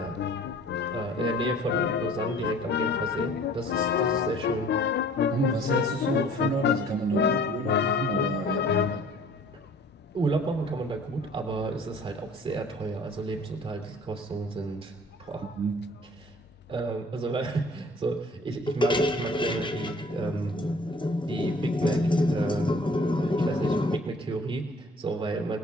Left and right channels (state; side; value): normal; both; correlation 0.51